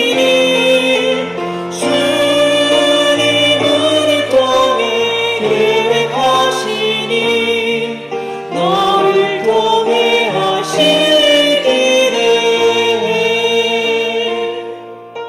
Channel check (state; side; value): identical; both; correlation 1.00